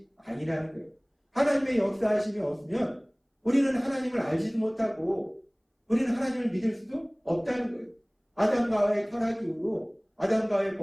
아니라는 거예요. 하나님의 역사하심이 없으면 우리는 하나님을 알지도 못하고 우리는 하나님을 믿을 수도 없다는 거예요. 아담과 하와의 타락 이후로, 아담과 하와의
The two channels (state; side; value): identical; both; correlation 1.00